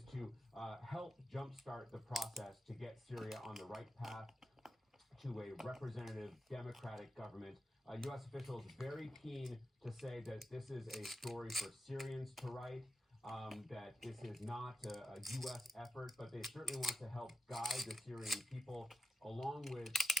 to help jumpstart the process to get Syria on the right path to a representative democratic government. U.S. officials very keen to say that this is a story for Syrians to write, that this is not a U.S. effort, but they certainly want to help guide the Syrian people along with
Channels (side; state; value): both; normal; correlation 0.92